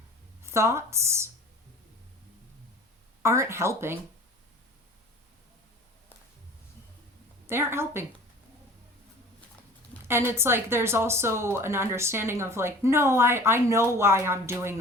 thoughts aren't helping. They aren't helping. And it's like there's also an understanding of like, no, I know why I'm doing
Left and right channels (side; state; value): both; normal; correlation 0.43